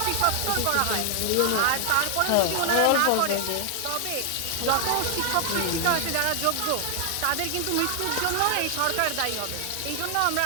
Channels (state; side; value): different; both; correlation 0.00